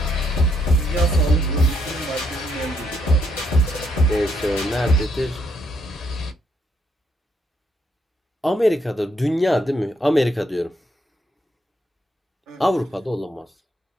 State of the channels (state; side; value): normal; both; correlation 0.74